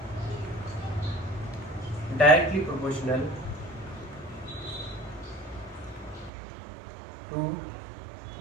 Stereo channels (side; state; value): left; drops out; at 6.3 s